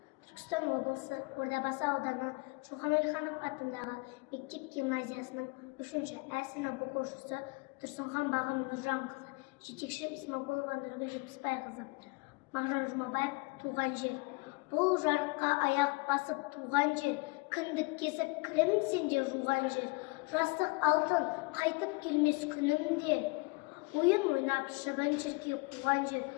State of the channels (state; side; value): quieter; right; 27.8 dB